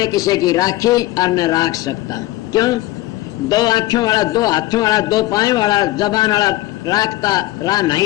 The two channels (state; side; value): quieter; right; 17.4 dB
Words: किसी की राखी और न राख सकता। क्यों? 2 आँखों वाला, 2 हाथों वाला, 2 पाँव वाला, जबान वाला राखता